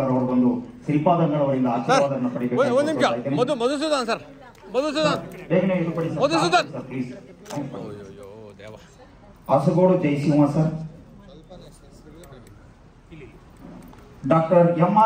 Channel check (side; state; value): both; identical; correlation 1.00